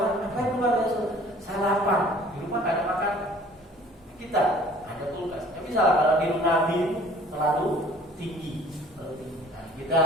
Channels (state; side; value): normal; both; correlation 0.51